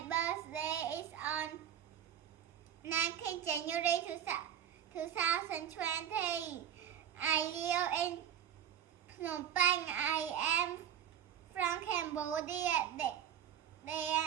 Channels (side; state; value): left; quieter; 9.5 dB